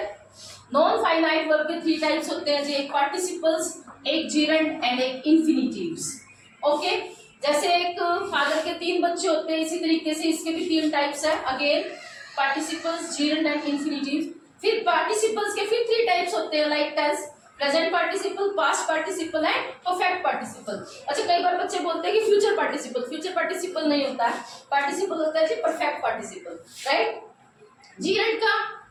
नॉन फाइनाइट वर्ब के 3 टाइप्स होते हैं जी, एक पार्टिसिपल्स, एक जीरंड एंड एक इंफिनिटिव्स। ओके, जैसे एक फादर के 3 बच्चे होते हैं, इसी तरीके से इसके भी 3 टाइप्स है। Again participles, gerund and infinitives. फिर पार्टिसिपल्स के फिर 3 टाइप्स होते हैं, like tense, present participle, past participle and perfect participle. अच्छा, कई बार बच्चे बोलते हैं कि फ्यूचर पार्टिसिपल, फ्यूचर पार्टिसिपल नहीं होता है, पार्टिसिपल होता है जी परफेक्ट पार्टिसिपल, राइट। जीरंड का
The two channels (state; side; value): identical; both; correlation 1.00